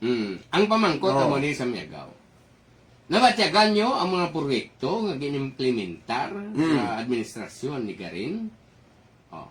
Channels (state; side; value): identical; both; correlation 1.00